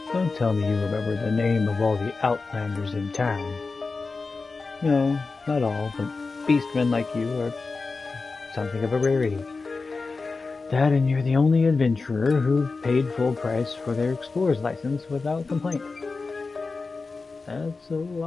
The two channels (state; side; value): quieter; right; 4.1 dB